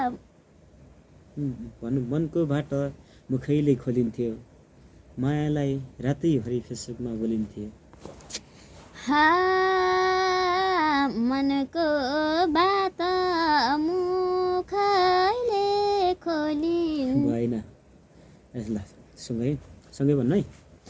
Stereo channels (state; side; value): identical; both; correlation 1.00